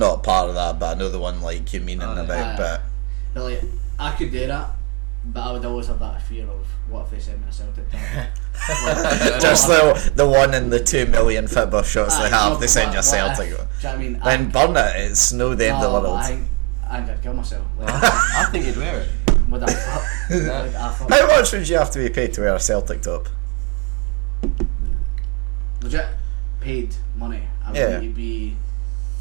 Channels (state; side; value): quieter; left; 25.6 dB